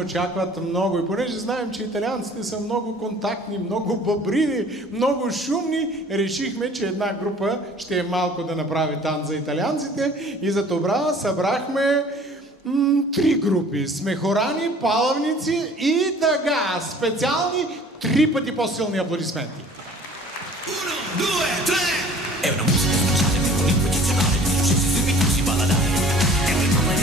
много. И понеже знаем, че италианците са много контактни, много бъбриви, много шумни, решихме, че една група ще е малко да направи танц за италианците. И за това събрахме три групи. Смехорани, палавници и тъга. Специални 3 пъти по-силни аплодисменти. 1, 2, 3. È una musica speciale, un ritmo eccezionale, di successi subito si balladare. È un ritmo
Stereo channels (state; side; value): normal; both; correlation 0.50